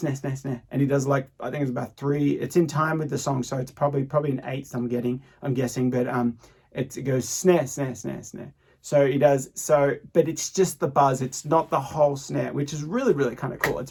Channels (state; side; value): identical; both; correlation 1.00